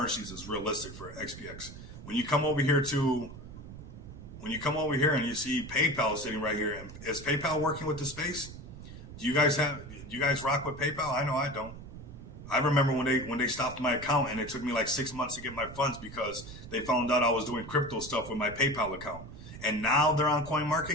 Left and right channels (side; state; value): right; noise; rumble, 13 dB below the sound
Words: is realistic for XPX. When you come over here and you see PayPal sitting right here, is PayPal working with the space? Do you guys rock with PayPal? I know I don't. I remember when they stopped my account, and it took me like 6 months to get my funds, because they found out I was doing crypto stuff with my PayPal account. And now they're on